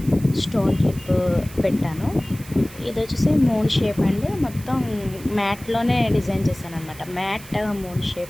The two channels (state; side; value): noise; right; hiss, 18 dB below the sound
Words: స్టోన్ క్లిప్ పెట్టాను. ఇది వచ్చేసి మూన్ షేప్ అండి. మొత్తం మ్యాట్లోనే డిజైన్ చేశాను అనమాట. Mat moon